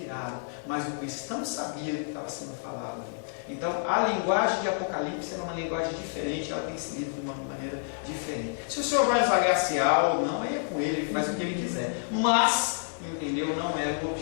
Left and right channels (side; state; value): right; silent; digital silence